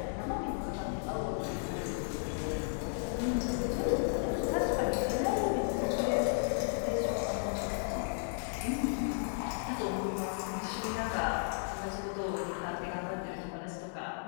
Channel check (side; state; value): right; silent; 55 dB below the other